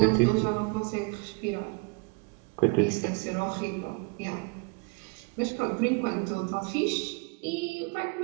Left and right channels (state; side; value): quieter; left; 31.2 dB